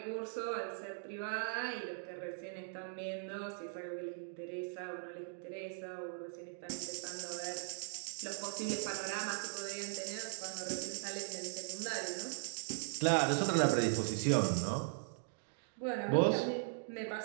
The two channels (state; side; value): silent; left; digital silence